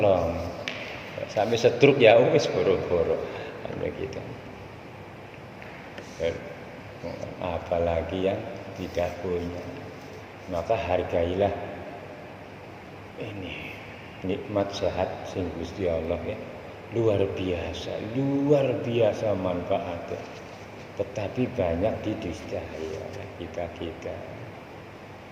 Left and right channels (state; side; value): identical; both; correlation 1.00